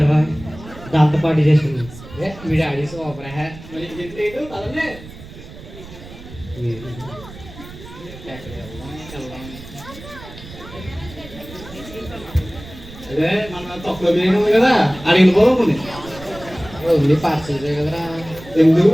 దాంతో పార్టీ చేసుకున్నాం. మీ డాడీ సూపర్ హే. మరి పదండి. అదే మన తొక్కలో బిర్యానీ ఉంది కదా, అడిగిన పోతుంది. ఓన్లీ పార్సల్ కదరా. ఎందుకు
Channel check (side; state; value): right; noise; rumble, 16 dB below the sound